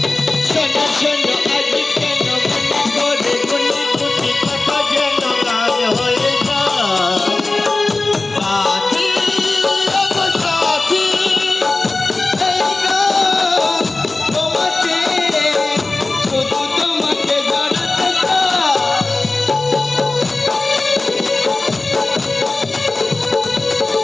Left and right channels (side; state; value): right; quieter; 3.3 dB